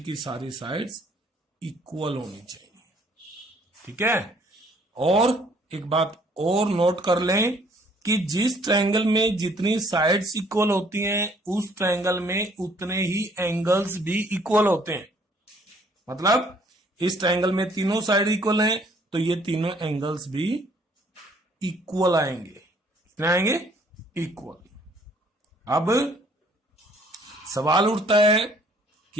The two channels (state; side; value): normal; both; correlation 0.61